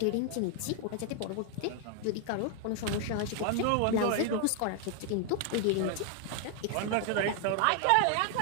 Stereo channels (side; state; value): both; different; correlation 0.00